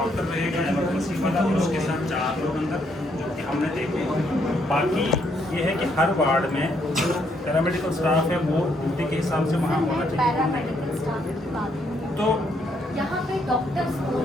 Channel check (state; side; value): normal; both; correlation 0.73